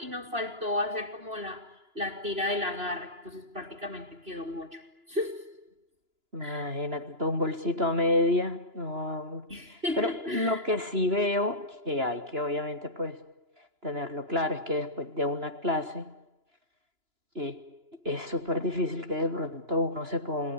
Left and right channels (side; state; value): left; late; 2.9 ms